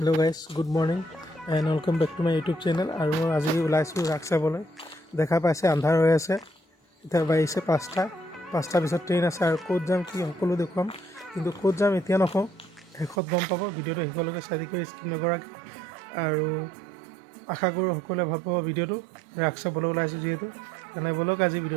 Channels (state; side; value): drops out; left; at 13.2 s